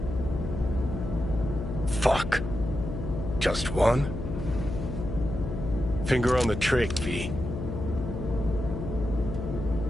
Fuck. Just one? Finger on the trick, V.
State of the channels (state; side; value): noise; left; hum, 5 dB below the sound